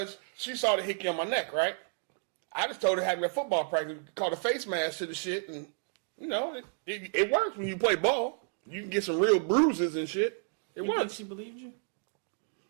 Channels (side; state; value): left; silent; 57 dB below the other